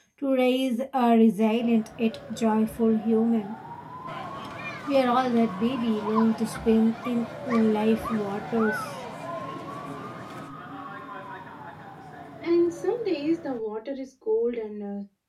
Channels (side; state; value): both; identical; correlation 1.00